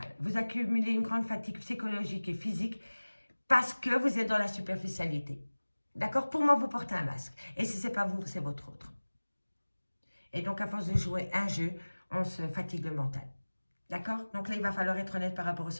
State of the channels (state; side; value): inverted; both; correlation -1.00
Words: Vous accumulez une grande fatigue psychologique et physique parce que vous êtes dans la superficialité. D'accord? Pour moi, vous portez un masque. Et si ce n'est pas vous, c'est votre autre. Et donc, à force de jouer un jeu, on se fatigue le mental. D'accord? Donc là, il va falloir être honnête par rapport au